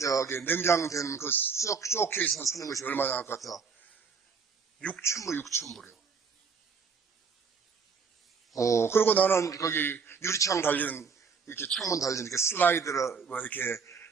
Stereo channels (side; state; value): left; quieter; 5.6 dB